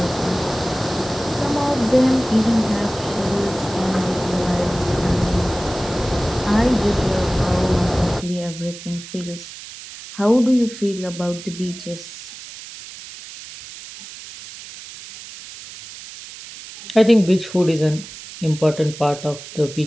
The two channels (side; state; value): right; noise; hiss, 14 dB below the sound